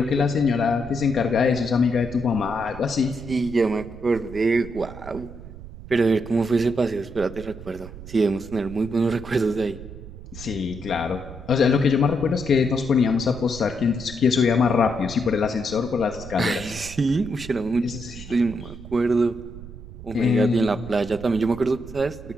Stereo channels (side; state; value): right; noise; rumble, 14 dB below the sound